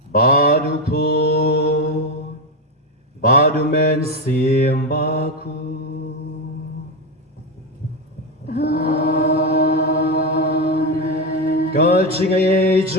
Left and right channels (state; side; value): normal; both; correlation 0.11